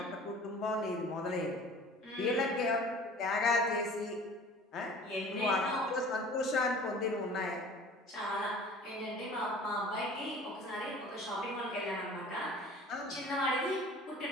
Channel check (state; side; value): normal; both; correlation 0.45